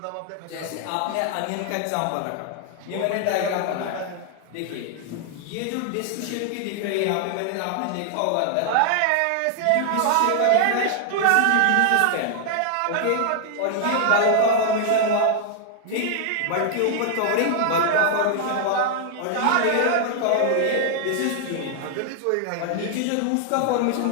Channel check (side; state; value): both; different; correlation 0.00